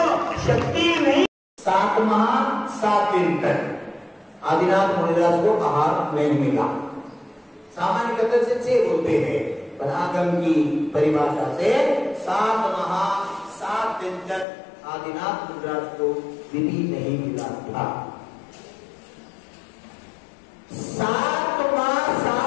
शक्ति नहीं, 7 माह 7 दिन तक आदिनाथ मुनिदास को आहार नहीं मिला। सामान्य कथन से 6 बोलते हैं, पर आगम की परिभाषा से 7 माह 7 दिन तक आदिनाथ मुनिदास को विधि नहीं मिला था। 7 माह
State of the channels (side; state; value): right; drops out; at 14.5 s